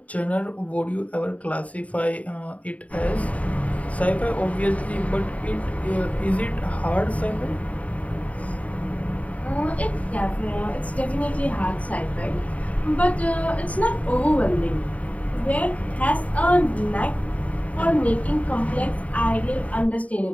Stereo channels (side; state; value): right; late; 0.069 ms